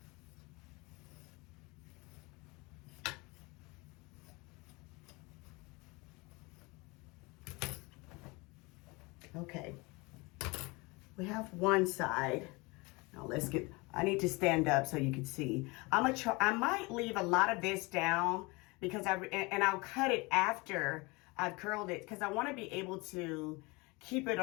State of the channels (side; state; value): right; quieter; 25.7 dB